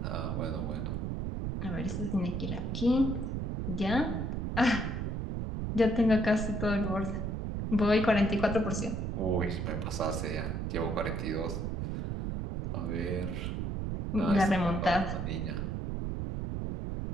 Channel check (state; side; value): noise; right; rumble, 2 dB below the sound